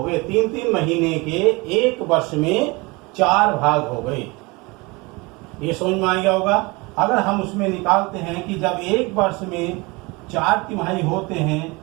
गए। 3 महीने के एक वर्ष में 4 भाग हो गए। ये समझ में आ गया होगा। अगर हम उसमें निकालते हैं कि जब एक वर्ष में 4 तिमाही होते हैं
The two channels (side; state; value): left; quieter; 25.3 dB